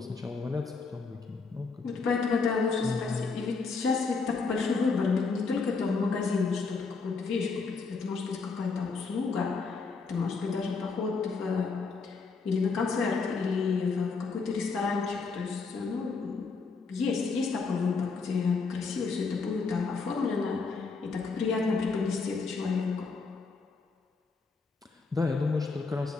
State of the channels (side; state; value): right; quieter; 4.5 dB